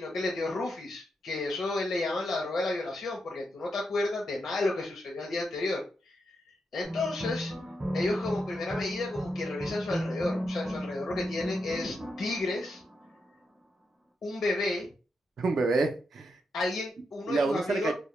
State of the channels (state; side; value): normal; both; correlation 0.84